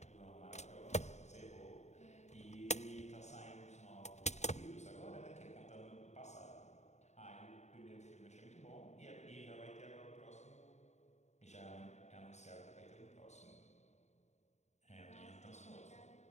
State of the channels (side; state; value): right; late; 0.33 ms